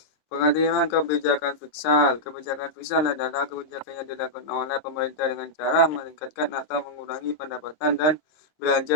Pengertian kebijakan fiskal. Kebijakan fiskal adalah kebijakan yang dilakukan oleh pemerintah dengan cara meningkatkan atau mengurangi pendapatan dan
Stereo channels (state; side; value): late; right; 26 ms